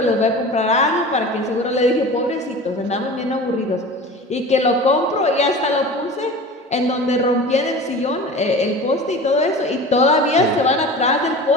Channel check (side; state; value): both; normal; correlation 0.36